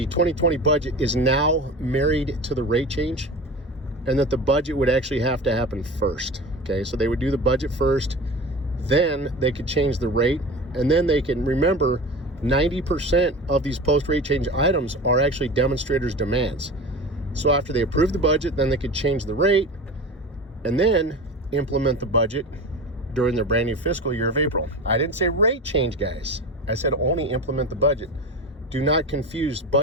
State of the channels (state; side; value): normal; both; correlation 0.31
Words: budget is now married to the rate change, and that the budget would actually have to happen first. Okay, so they would do the budget first, then they could change the rate, and then they can remember 90% of these post-rate change items are actually demonstrators' demands. So after they approve the budget, then they could change the rate and then implement the budget during their brand new fiscal year of April. I didn't say rate change, guys. I said only implement the budget. Do not confuse